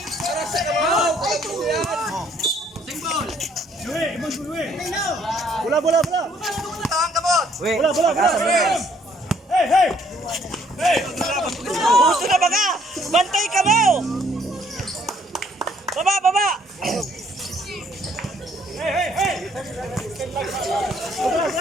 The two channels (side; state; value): both; normal; correlation 0.64